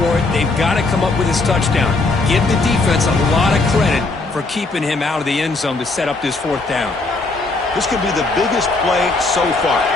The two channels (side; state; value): right; quieter; 3.5 dB